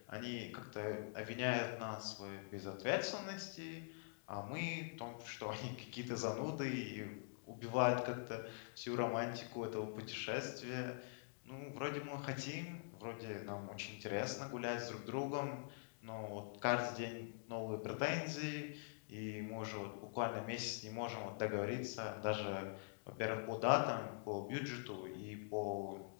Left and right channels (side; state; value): right; silent; digital silence